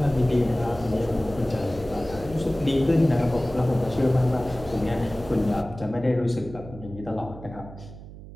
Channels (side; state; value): right; noise; hum, 15 dB below the sound